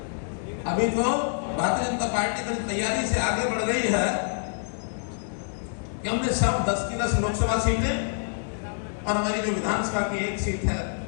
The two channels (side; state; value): right; silent; digital silence